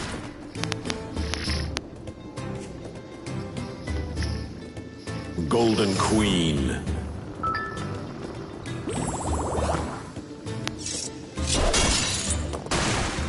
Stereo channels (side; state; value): both; identical; correlation 1.00